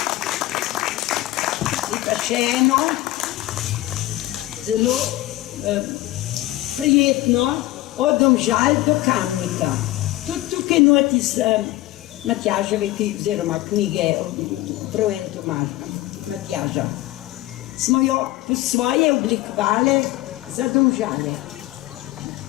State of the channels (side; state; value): right; quieter; 17.0 dB